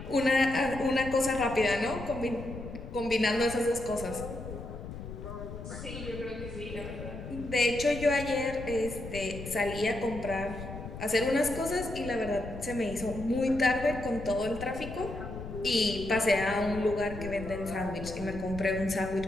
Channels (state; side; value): noise; left; rumble, 10 dB below the sound